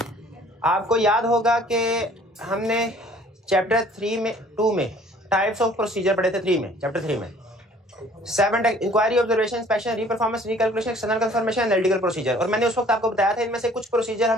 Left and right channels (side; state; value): both; normal; correlation 0.54